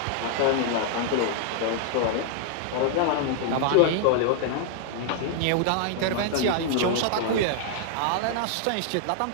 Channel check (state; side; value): different; both; correlation 0.00